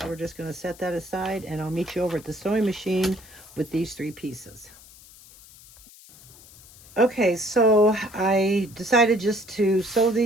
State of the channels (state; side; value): noise; left; hiss, 22 dB below the sound